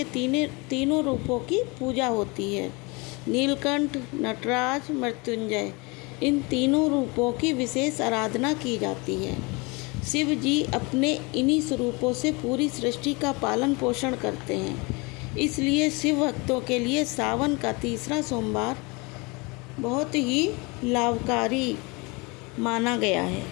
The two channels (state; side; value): quieter; right; 27.6 dB